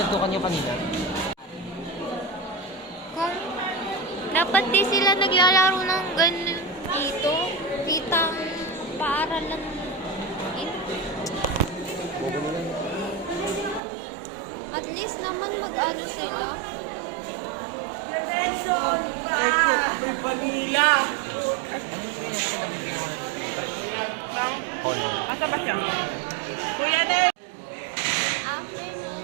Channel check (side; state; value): left; drops out; at 13.8 s